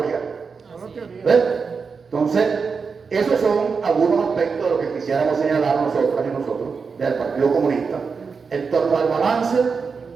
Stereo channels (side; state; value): left; quieter; 5.3 dB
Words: ¿Ves? Entonces, esos son algunos aspectos de lo que quisiéramos señalar nosotras y nosotros del Partido Comunista en torno al balance